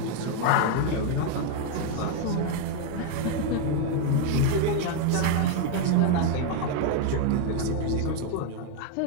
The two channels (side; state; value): both; different; correlation 0.01